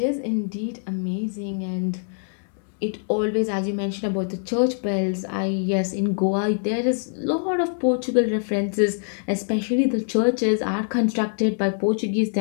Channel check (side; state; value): right; silent; 63 dB below the other